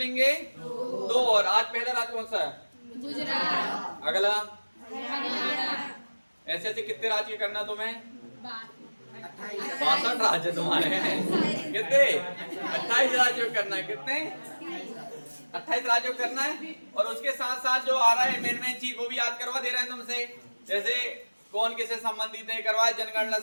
2 और। आज पहला राज्य कौन सा है? गुजरात। अगला हरियाणा। ऐसे ऐसे कितने राज्य करना तुम्हें? 62 राज्य तुम्हारे हैं। कितने? 28 राज्यों करना है। कितने? 28 राज्यों करना है। और उसके साथ साथ जो आ रहा है मेन चीज वो भी याद करवा दे रहे हैं तुमसे। जैसे कौन किससे संबंधित है करवा, जनगणना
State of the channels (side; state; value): both; inverted; correlation -1.00